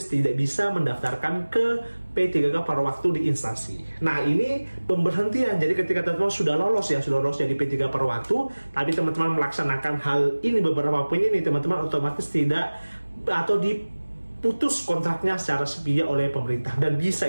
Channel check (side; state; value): both; inverted; correlation -1.00